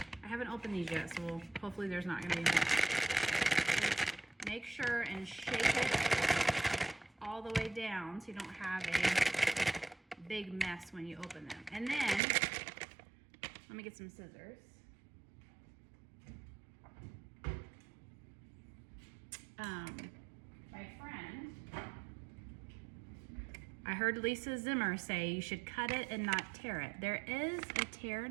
I haven't opened these yet, so hopefully there's not gonna be anything. Make sure and shake it all the way down so you don't have a big mess when you open them. And then, let me get some scissors. My friend, I heard Lisa Zimmer say you should cut it and not tear it. There is a tear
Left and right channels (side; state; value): left; drops out; at 12.2 s